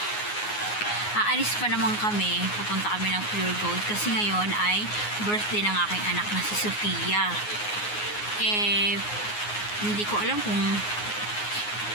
Aalis pa naman kami. Pupunta kami ng Pure Gold kasi ngayon ay birthday ng aking anak na si Sofia. Hindi ko alam kung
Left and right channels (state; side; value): late; right; 9.5 ms